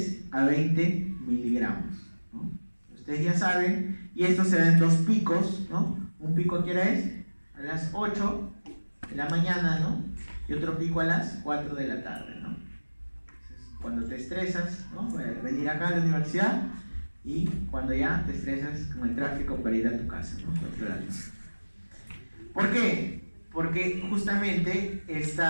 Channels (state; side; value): inverted; both; correlation -1.00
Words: a 20 miligramos, ¿no? Ustedes ya saben, y esto se da en dos picos, ¿no? Un pico, ¿a qué hora es? A las 8 de la mañana, ¿no? Y otro pico a las 4 de la tarde, ¿no? Entonces, cuando te estresas, ¿no? Venir acá a la universidad, y cuando ya te estresas con el tráfico para ir a tu casa, ¿no? ¿Por qué? Porque justamente